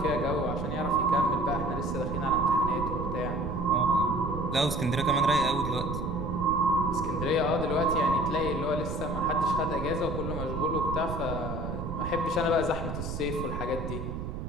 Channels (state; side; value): noise; right; rumble, 6 dB below the sound